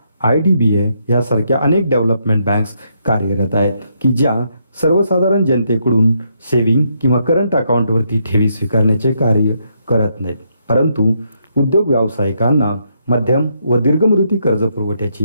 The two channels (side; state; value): both; inverted; correlation -0.76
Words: IDBI यासारख्या अनेक डेव्हलपमेंट बँक्स कार्यरत आहेत की ज्या सर्वसाधारण जनतेकडून सेविंग किंवा करंट अकाउंटवरती ठेवी स्वीकारण्याचे कार्य करत नाहीत, परंतु उद्योग व्यावसायिकांना मध्यम व दीर्घ मुदती कर्ज